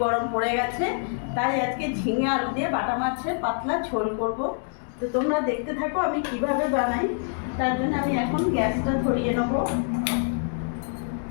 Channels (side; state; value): right; silent; 61 dB below the other